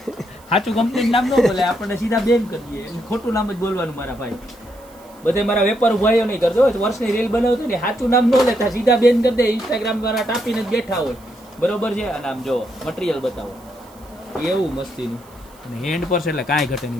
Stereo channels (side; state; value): right; noise; hiss, 27 dB below the sound